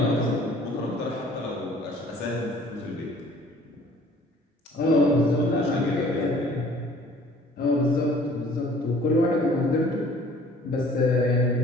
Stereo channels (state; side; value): normal; both; correlation 0.53